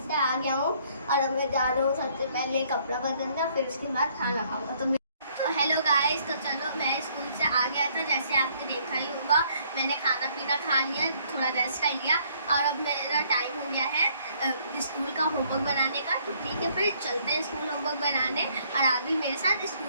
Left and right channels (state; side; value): inverted; both; correlation -0.65